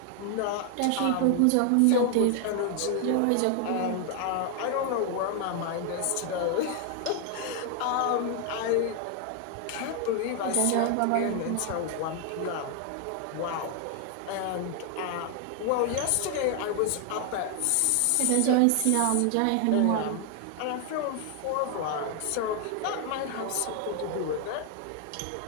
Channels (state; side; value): different; both; correlation 0.00